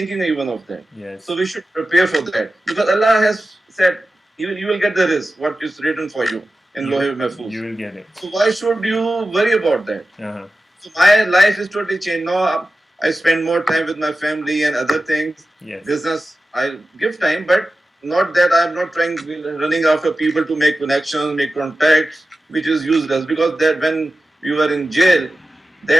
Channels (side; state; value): both; normal; correlation 0.94